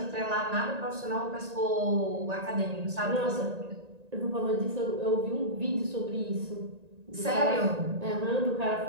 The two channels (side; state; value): left; late; 1.9 ms